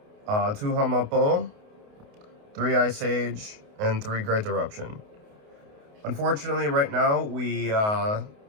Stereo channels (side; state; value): left; late; 28 ms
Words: 2 Hamapo, 3 Ice Age, and 3 Great Eruption. Unfortunately, right now, we